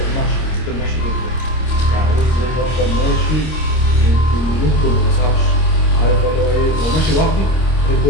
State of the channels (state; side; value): late; right; 26 ms